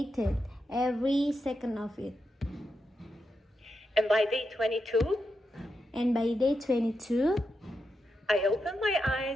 every second of it. And by day 22, And by day 22, I opened my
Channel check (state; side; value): normal; both; correlation 0.86